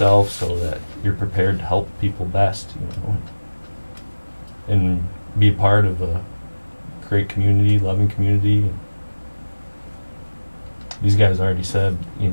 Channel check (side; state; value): both; inverted; correlation -1.00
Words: so that you're prepared to help people best, and be a part of a great community, loving community. And these guys already said,